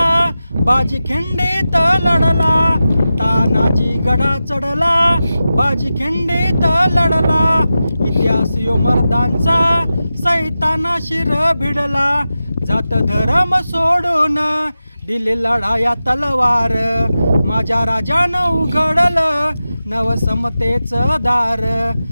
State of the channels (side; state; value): both; inverted; correlation -0.93